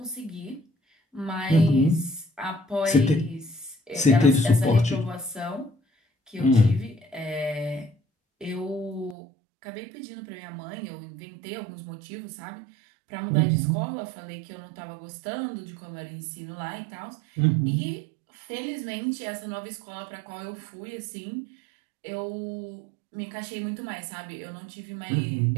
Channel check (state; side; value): drops out; left; at 9.2 s